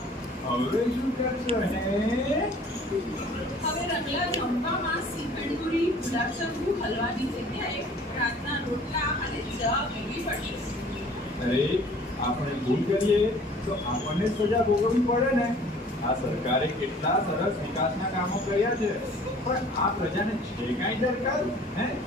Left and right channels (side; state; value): both; normal; correlation 0.51